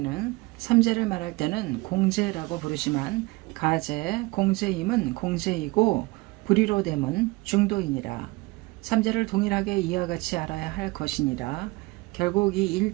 삼재를 말할 때는 공재라고 부르지만 가재, 공재임은 공재이고 불의로 됨은 중도이니라. 삼재를 동일하게 이와 같이 알아야 할 것이니라. 결국 이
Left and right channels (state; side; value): quieter; left; 23.3 dB